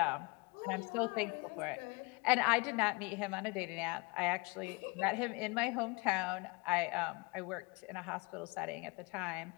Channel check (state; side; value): quieter; right; 27.2 dB